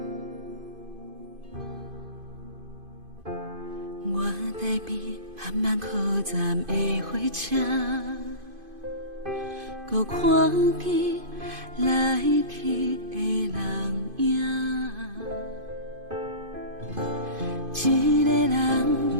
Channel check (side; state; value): left; late; 2.5 ms